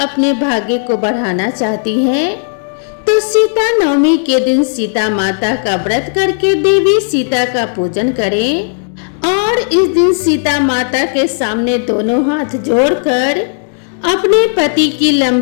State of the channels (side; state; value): right; silent; digital silence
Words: भाग्य को बढ़ाना चाहती हैं तो तो सीता नवमी के दिन सीता माता का व्रत करके देवी सीता का पूजन करें और इस दिन सीता माता के सामने दोनों हाथ जोड़कर अपने पति की